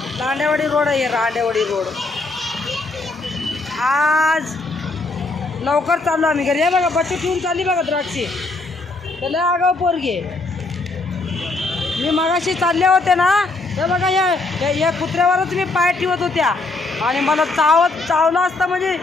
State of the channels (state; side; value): quieter; right; 3.3 dB